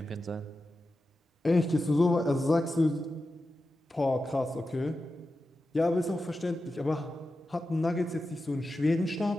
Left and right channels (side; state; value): both; normal; correlation 0.91